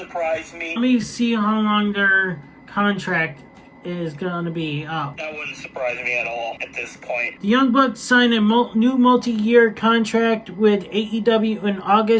me. Let me see how long their contract is going to be up. That wouldn't surprise me at all at this point. The Young Bucks signed a new multi-year contract with AEW in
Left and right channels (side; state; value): both; identical; correlation 1.00